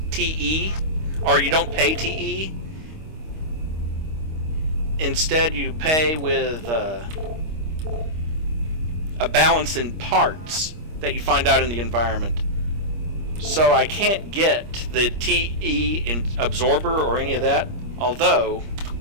TE, or you don't pay TE. Instead, you pay with a balance in parts that you find out in the environment. So I can't get the TE in absorber or any of that, although...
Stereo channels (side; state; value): left; late; 25 ms